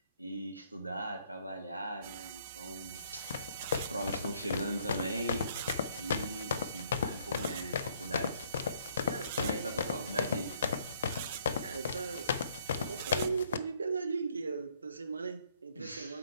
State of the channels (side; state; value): both; inverted; correlation -0.65